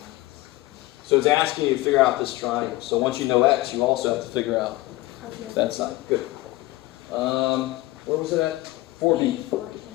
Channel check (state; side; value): quieter; right; 18.7 dB